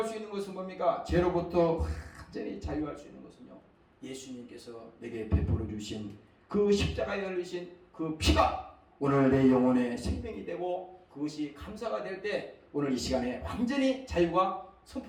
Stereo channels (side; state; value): both; identical; correlation 1.00